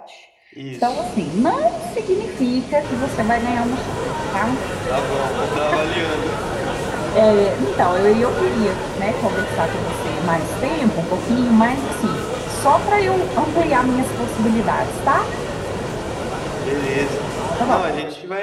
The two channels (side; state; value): both; identical; correlation 1.00